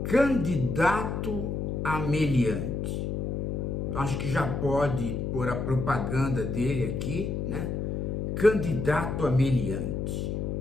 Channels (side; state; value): left; noise; hum, 2 dB below the sound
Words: candidato a meliante. Acho que já pode pôr a propaganda dele aqui, né? Candidato a meliante.